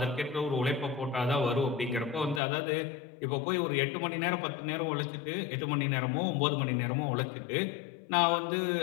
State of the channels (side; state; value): right; drops out; at 2.4 s